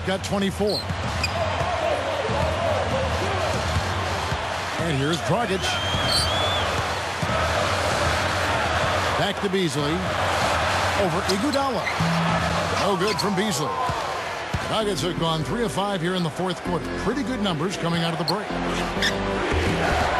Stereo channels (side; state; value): both; identical; correlation 1.00